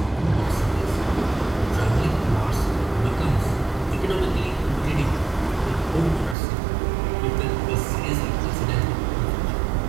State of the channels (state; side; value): drops out; left; at 6.4 s